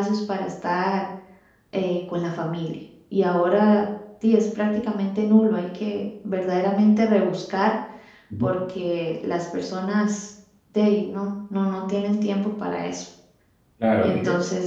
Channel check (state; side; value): identical; both; correlation 1.00